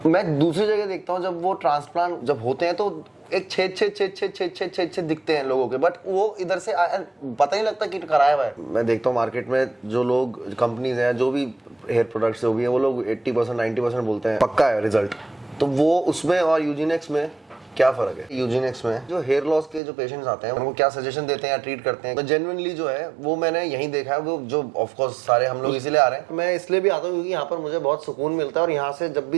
मैं दूसरी जगह देखता हूँ जब वो ट्रांसप्लांट जब होते हैं तो एक छेद दिखते हैं लोगों के, बट वो इधर से पता नहीं लगता कि कराया हुआ है। मैं देखता हूँ मार्केट में जो लोग कंपनीज हैं जो भी हेयर प्रोडक्ट्स जो भी है वो लोग 80% 90% बोलते हैं पक्का है रिजल्ट। तो वो उसमें और यूजीनेक्स में क्या फर्क है? यूजीनेक्स में जो हेयर लॉस के जो पेशेंट्स आते हैं उनको क्या सजेशन देते हैं या ट्रीट करते हैं, तो जेन्युइनली जो है वो मैंने यहीं देखा है। वो जो ऑफ कोर्स सारे हम लोग इसीलिए आ रहे हैं, मैं इसलिए भी आता हूँ क्योंकि यहाँ पर मुझे बहुत सुकून मिलता है और यहाँ से जब भी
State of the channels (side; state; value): left; drops out; at 19.8 s